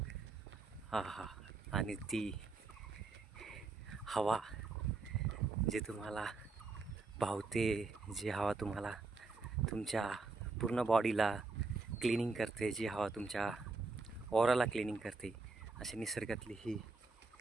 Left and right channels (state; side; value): quieter; left; 3.9 dB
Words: हा हा, आणि ती हवा जी तुम्हाला भावते, जी हवा तुम्हाला तुमच्या पूर्ण बॉडीला क्लिनिंग करते, जी हवा तुमच्या ऑराला क्लिनिंग करते. अशी निसर्गातली ही